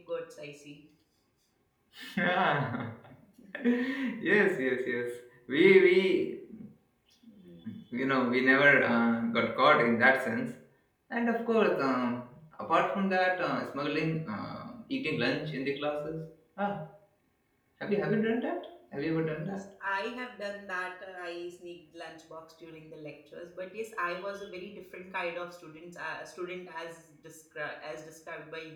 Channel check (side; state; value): both; identical; correlation 1.00